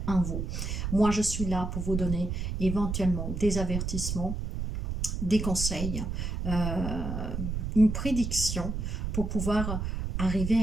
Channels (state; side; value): noise; right; rumble, 3 dB below the sound